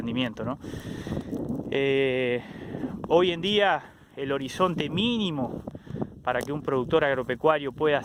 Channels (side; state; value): both; identical; correlation 1.00